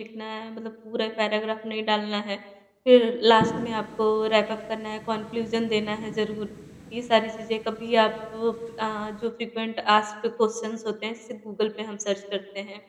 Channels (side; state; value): both; identical; correlation 1.00